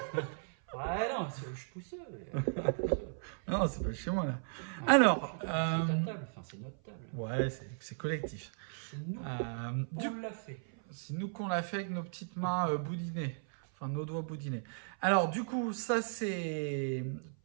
Ouais, non, je pousse. Non, c'est pas chez moi là. Alors, c'est ta table, enfin c'est notre table. Ouais, c'est collectif. C'est nous qu'on l'a fait. C'est nous qu'on l'a fait avec nos petites mains boudinées. Enfin, nos doigts boudinés. Alors, du coup, ça, c'est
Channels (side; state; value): left; silent; 54 dB below the other